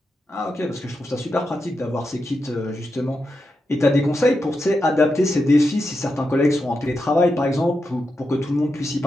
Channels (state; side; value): normal; both; correlation 0.87